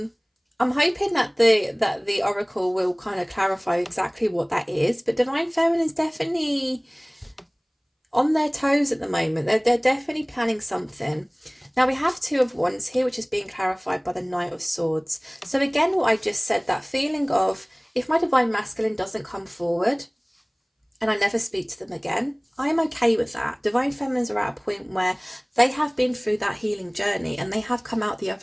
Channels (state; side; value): identical; both; correlation 1.00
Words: I'm hoping that the oracle will kind of clarify exactly what that is. But Divine Feminine is definitely on their toes at the moment. They're definitely planning something. Now we have Two of Wands here, which is being clarified by the Knight of Swords. So again, what I just said, that feeling of if my Divine Masculine doesn't come forward and I never speak to them again, I'm okay with that. Divine Feminines are at a point where they have been through that healing journey and they have come out the